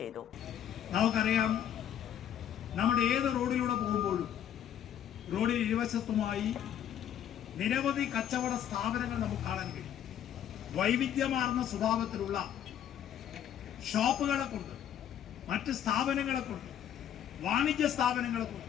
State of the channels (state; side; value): quieter; right; 10.0 dB